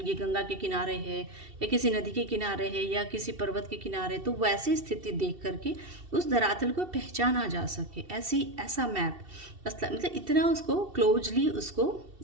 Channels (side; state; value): left; late; 2.7 ms